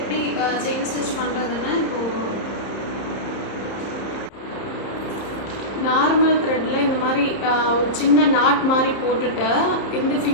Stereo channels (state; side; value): late; right; 30 ms